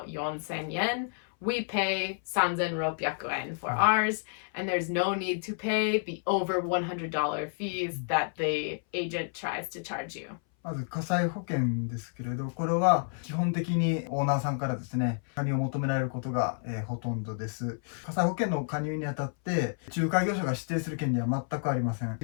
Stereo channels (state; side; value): silent; right; 58 dB below the other